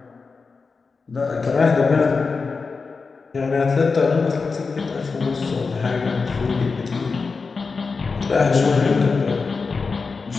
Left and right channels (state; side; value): quieter; right; 4.6 dB